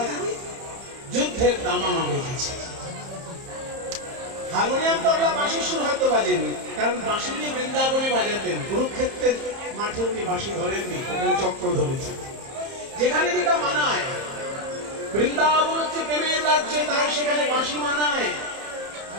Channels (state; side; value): late; left; 30 ms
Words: যুদ্ধের দামামা বেজেছে। হারমোনিয়াম, তবলা, বাঁশির সুর হয়তো বাজেনি, কারণ বাঁশি নিয়ে বৃন্দাবনে বাজাতেন। কুরুক্ষেত্রের মাঠে উনি বাঁশি ধরেননি, ওখানে চক্র ধরেছেন। যেখানে যেটা মানায়, বৃন্দাবন হচ্ছে প্রেমের রাজ্য, তাই সেখানে বাঁশি মানায়।